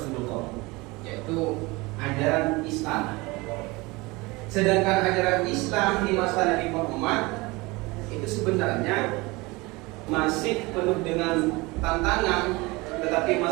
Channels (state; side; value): quieter; left; 23.5 dB